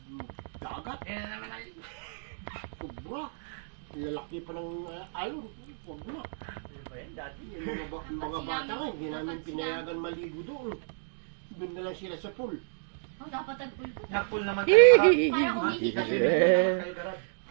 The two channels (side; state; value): left; silent; digital silence